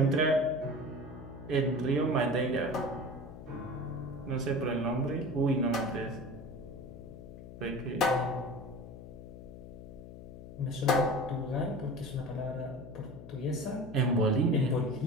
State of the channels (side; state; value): left; noise; hum, 14 dB below the sound